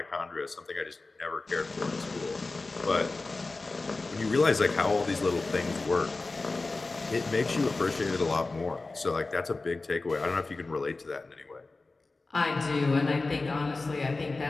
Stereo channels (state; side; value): quieter; right; 3.5 dB